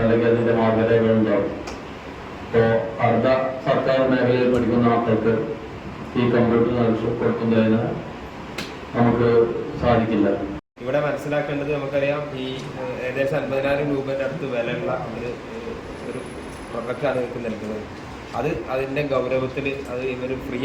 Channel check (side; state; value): both; identical; correlation 1.00